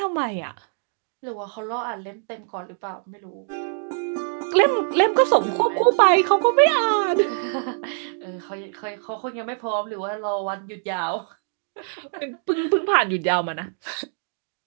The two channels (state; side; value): silent; left; digital silence